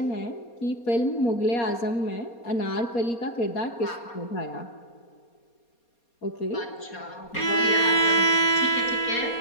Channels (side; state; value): right; late; 4.2 ms